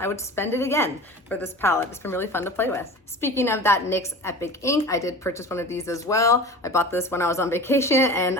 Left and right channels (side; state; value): both; normal; correlation 0.36